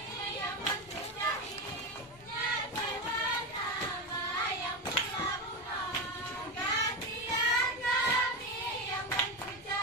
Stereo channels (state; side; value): normal; both; correlation 0.16